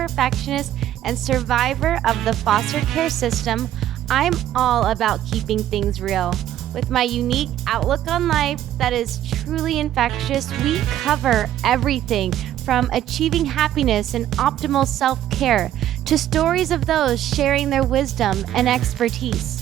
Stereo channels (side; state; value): left; quieter; 12.1 dB